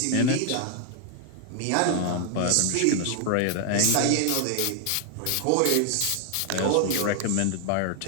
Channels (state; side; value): different; both; correlation 0.00